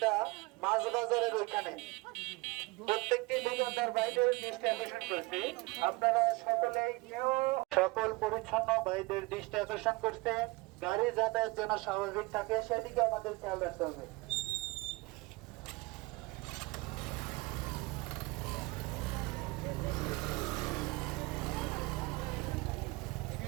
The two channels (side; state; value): left; quieter; 24.0 dB